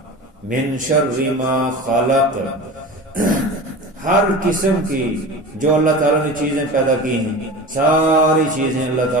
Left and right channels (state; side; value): normal; both; correlation 0.32